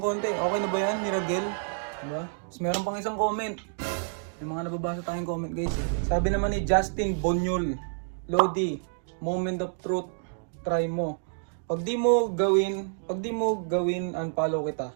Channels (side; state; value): left; silent; digital silence